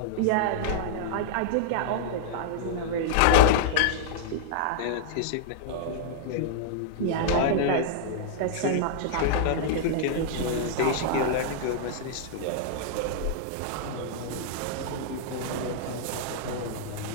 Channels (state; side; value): different; both; correlation -0.01